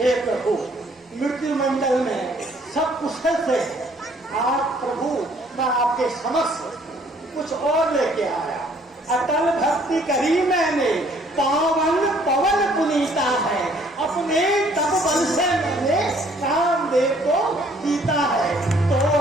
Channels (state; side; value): normal; both; correlation 0.61